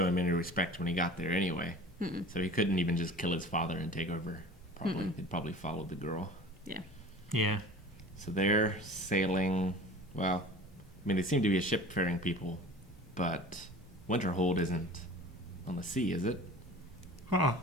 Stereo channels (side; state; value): both; normal; correlation 0.41